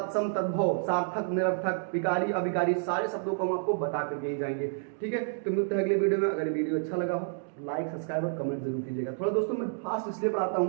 तद्भव, सार्थक निरर्थक, विकारी अविकारी, सारे शब्दों को हम आपको बता करके ही जाएंगे, ठीक है। तो मिलते हैं अगले वीडियो में। अगर वीडियो अच्छा लगा हो लाइक सब्सक्राइब और कमेंट जरूर कीजिएगा। थोड़ा दोस्तों मैं फास्ट इसलिए पढ़ाता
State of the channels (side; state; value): left; silent; digital silence